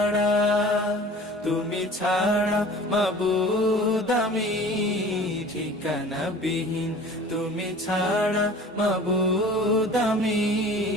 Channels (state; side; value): normal; both; correlation 0.44